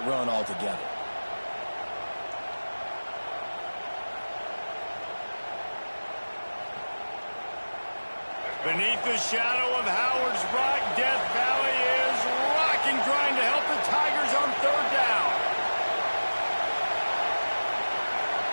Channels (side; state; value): both; inverted; correlation -1.00